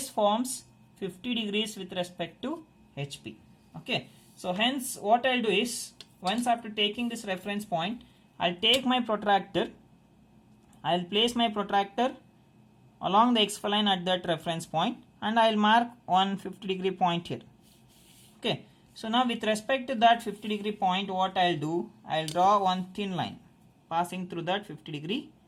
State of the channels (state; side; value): identical; both; correlation 1.00